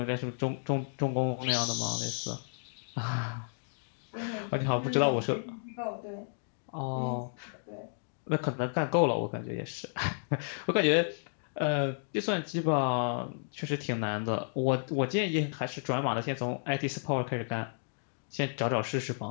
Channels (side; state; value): right; silent; digital silence